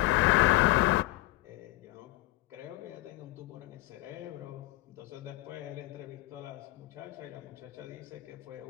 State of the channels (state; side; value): quieter; right; 18.2 dB